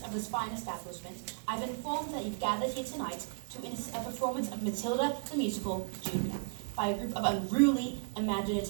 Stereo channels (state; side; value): silent; left; 55 dB below the other